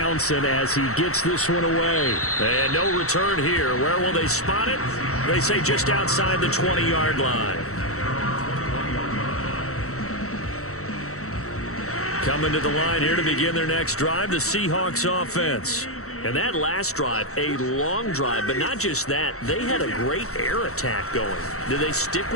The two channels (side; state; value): right; late; 0.64 ms